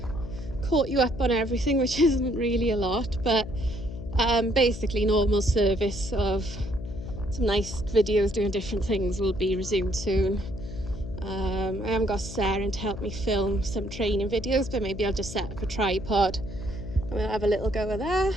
caught you up on everything, which isn't really a lot, but basically normal service of some nice videos doing different things will be resumed soon. I haven't got Sarah to help me film some training videos, but maybe I'll just set up a tripod and we'll have a little go of that.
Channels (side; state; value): left; noise; hum, 10 dB below the sound